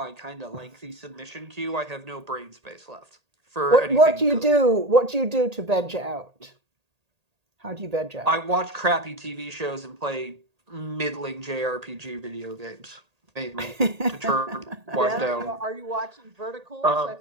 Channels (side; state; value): left; late; 1.8 ms